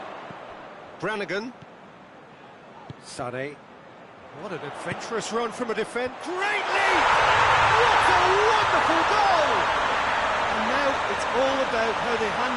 Brannigan. Sane. What an adventurous run from a defence. Great lead! What a wonderful goal! And now it's all about how they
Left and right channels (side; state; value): both; identical; correlation 1.00